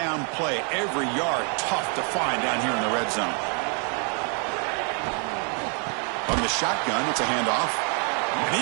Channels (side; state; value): left; quieter; 39.3 dB